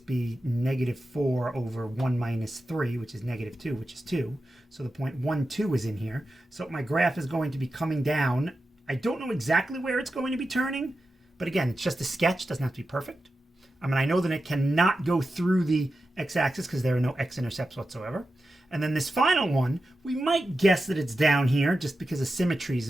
be negative 4 over 1 minus 3, which is negative 2, which is 2. So the point 1, 2 is in here. So my graph is going to be coming down. I don't know exactly where it's going to be turning, but again, it's just a sketch. Doesn't have to be perfect. I mean, I know that it cannot go through the x-axis because there are no x-intercepts whatsoever. And then this final one, we might guess that it's down here just because of symmetries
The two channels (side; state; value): both; normal; correlation 0.91